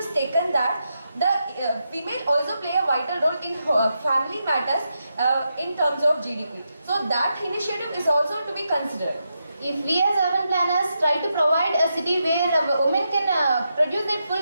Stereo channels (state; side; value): inverted; both; correlation -0.85